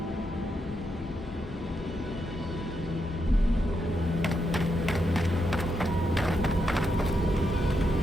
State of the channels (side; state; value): both; normal; correlation 0.82